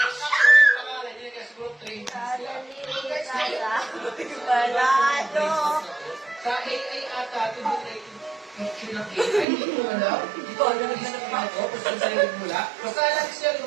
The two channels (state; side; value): drops out; left; at 9.5 s